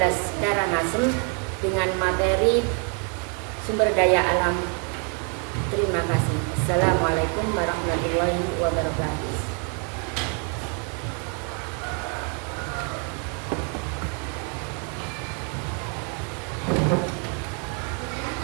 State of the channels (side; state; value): left; quieter; 39.2 dB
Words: Karangasem dengan materi sumber daya alam. Terima kasih. Assalamualaikum warahmatullahi wabarakatuh.